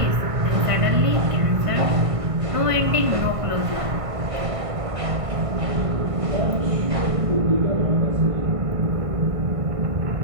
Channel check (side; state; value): left; late; 1.5 ms